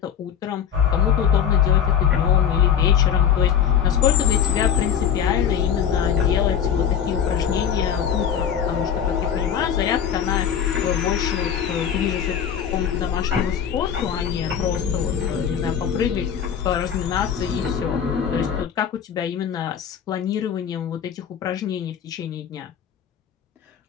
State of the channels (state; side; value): quieter; right; 8.4 dB